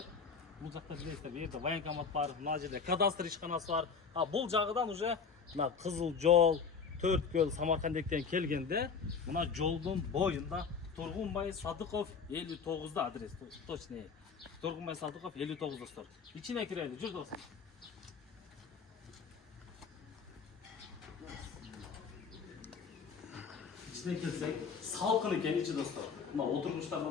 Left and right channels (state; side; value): quieter; right; 5.7 dB